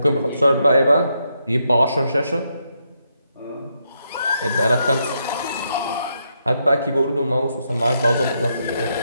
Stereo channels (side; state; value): both; inverted; correlation -0.80